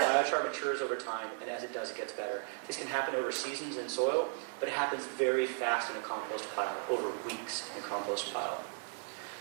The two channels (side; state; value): left; silent; digital silence